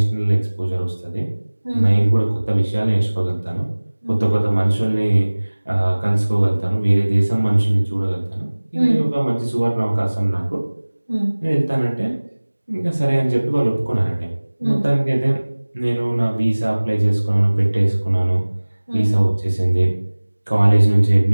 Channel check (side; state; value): both; inverted; correlation -1.00